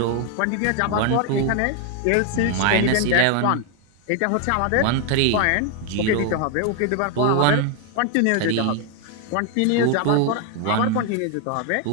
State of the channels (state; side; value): different; both; correlation 0.01